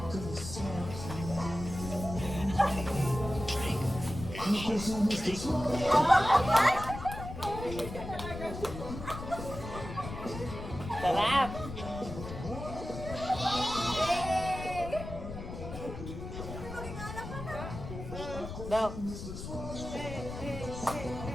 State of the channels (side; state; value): left; noise; rumble, 9 dB below the sound